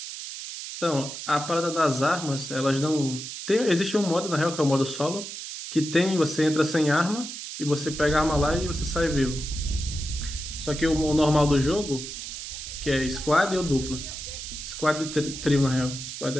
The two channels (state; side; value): noise; right; hiss, 9 dB below the sound